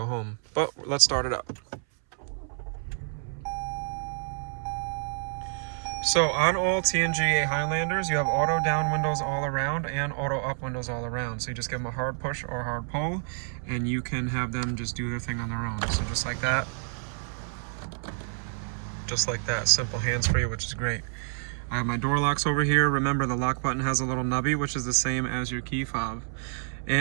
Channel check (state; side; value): silent; left; 59 dB below the other